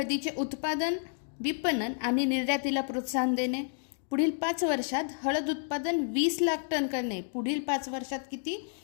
उत्पादन, विपणन आणि निर्यातीला प्रोत्साहन देणे. पुढील 5 वर्षात हळद उत्पादन 20 लाख टन करणे. पुढील 5 वर्षात किती?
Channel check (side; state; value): right; silent; digital silence